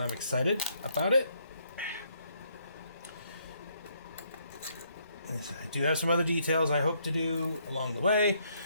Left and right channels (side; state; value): both; inverted; correlation -0.71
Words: I'm excited about it. I do have some other details I hope to do along the way,